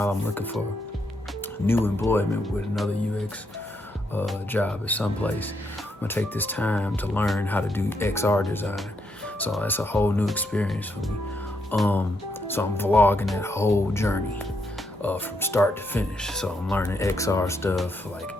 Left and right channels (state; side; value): normal; both; correlation 0.78